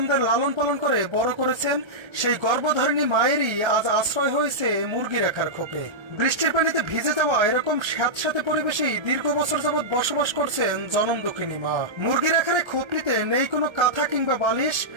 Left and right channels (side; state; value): left; late; 1.3 ms